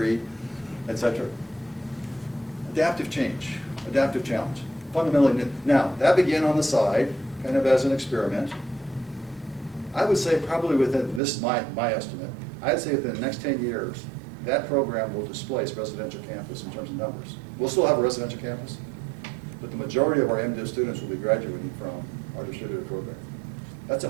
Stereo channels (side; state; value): left; drops out; at 11.2 s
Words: etc. Adaptive change, adaptive challenge. Fundamentally new. Now, that began on the side, kind of as an experiment. I would say probably within, this is my estimate, I'd say within the next 10 years, that program will displace residential campus in terms of numbers. We'll still have a residential campus, but the majority of our MDiv students will be graduating from our distributed program. That's a